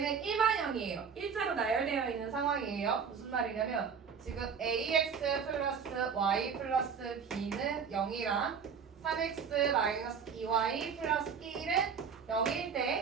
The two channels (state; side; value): quieter; left; 6.4 dB